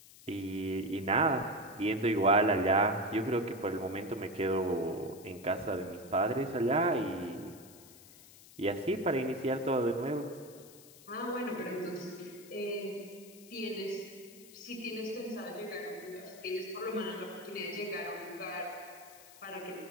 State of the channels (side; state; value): left; noise; hiss, 20 dB below the sound